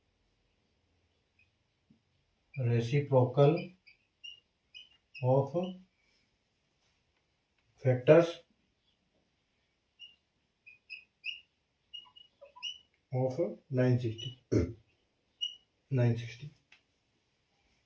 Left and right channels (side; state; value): both; identical; correlation 1.00